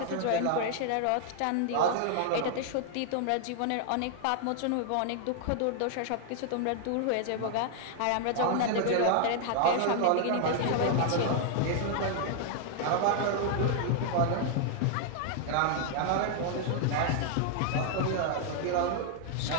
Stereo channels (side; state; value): both; different; correlation 0.00